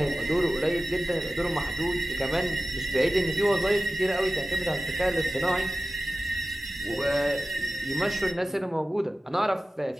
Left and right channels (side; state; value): both; normal; correlation 0.95